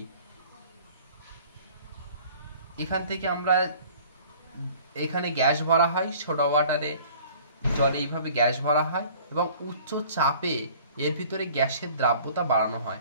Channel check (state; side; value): inverted; both; correlation -0.50